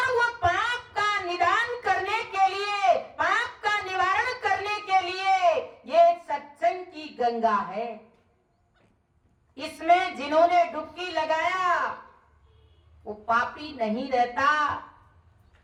वो पाप का निदान करने के लिए, पाप का निवारण करने के लिए ये सत्संग की गंगा है। इसमें जिन्होंने डुबकी लगाया वो पापी नहीं रहता,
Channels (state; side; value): identical; both; correlation 1.00